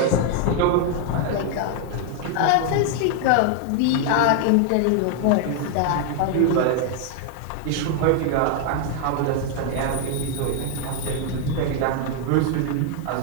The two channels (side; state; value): both; different; correlation 0.00